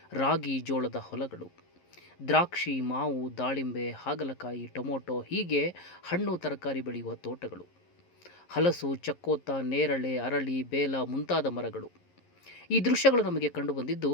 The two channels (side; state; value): right; late; 11 ms